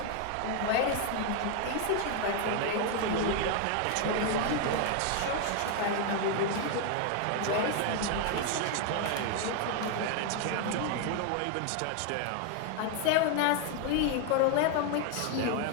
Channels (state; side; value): different; both; correlation 0.01